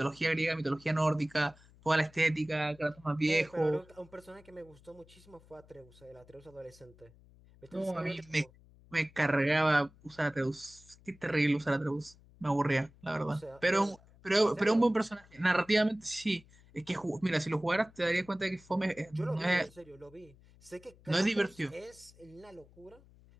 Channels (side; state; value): left; noise; hum, 26 dB below the sound